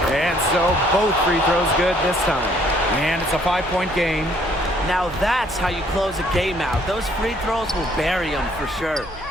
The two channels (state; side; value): noise; right; hum, 19 dB below the sound